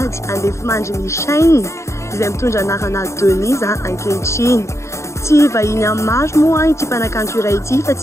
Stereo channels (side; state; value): right; late; 0.14 ms